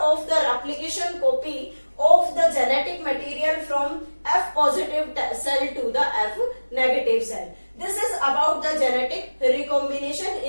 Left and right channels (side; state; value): both; inverted; correlation -1.00